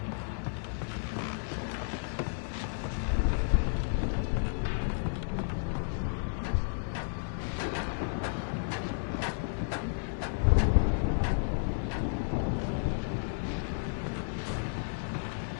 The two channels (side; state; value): right; silent; digital silence